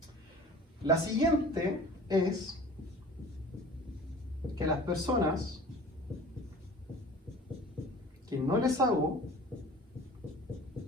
La siguiente es que las personas que no les hago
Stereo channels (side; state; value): both; normal; correlation 0.44